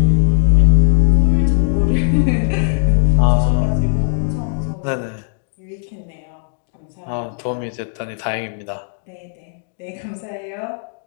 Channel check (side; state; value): right; silent; 68 dB below the other